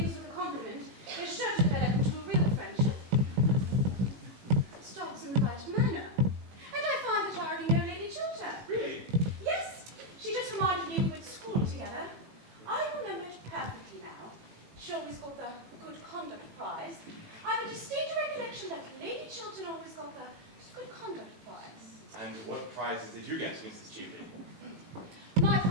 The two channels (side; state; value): left; late; 18 ms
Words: with a compliment is sure to develop into a real friendship. Stop good conduct prize. And what prizes did you get, Mrs. Cheveley? My